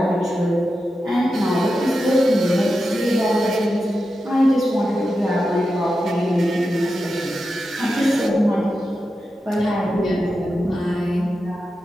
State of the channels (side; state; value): both; normal; correlation 0.90